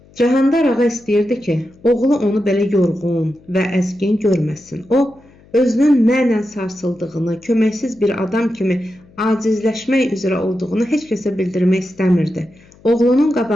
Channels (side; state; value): left; noise; hum, 27 dB below the sound